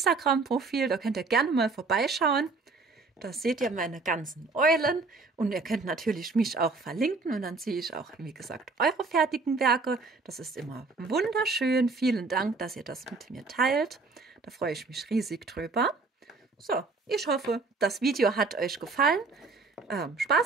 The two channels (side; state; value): left; quieter; 3.9 dB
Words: Da könnt ihr gerne mal vorbeischauen. Da seht ihr meine ganzen Eulen. Und ihr könnt natürlich mich auch verlinken. Und dann sehe ich auch, wie gesagt, eure fertigen Werke. Das ist immer wunderschön. Vielen Dank, dass ihr das mit mir teilt. Da freue ich mich riesig drüber. So, ich hoffe, das Video hat euch gefallen.